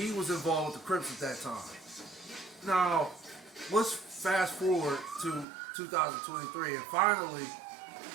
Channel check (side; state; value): left; drops out; at 5.5 s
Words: was involved with the Crips at that time. Now, let's fast forward to 2023, and finally,